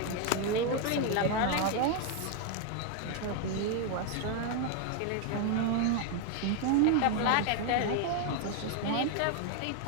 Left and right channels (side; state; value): both; different; correlation 0.01